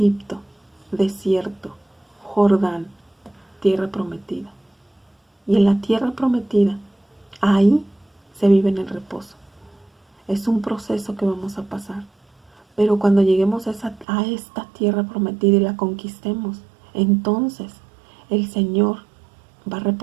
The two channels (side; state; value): left; drops out; at 14.1 s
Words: desierto, Jordán, tierra prometida. Y en la tierra prometida, ahí se vive en el reposo. Es un proceso que vamos a pasar. Pero cuando lleguemos a esta tierra prometida y la conquistemos, entonces el Señor va a